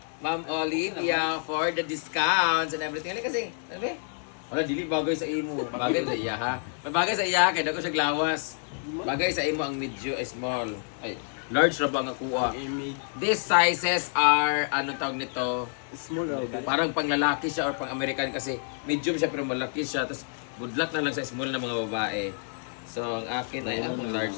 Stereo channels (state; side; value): silent; right; 59 dB below the other